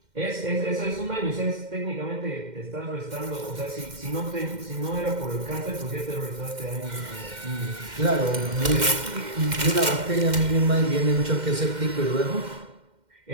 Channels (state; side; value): late; left; 2.1 ms